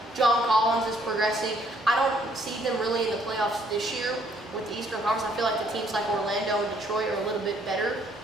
John Collins is progressing. I don't see them really in the playoffs this year with the Eastern Conference. I feel like the teams like Orlando and Detroit are a little bit better,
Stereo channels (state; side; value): normal; both; correlation 0.65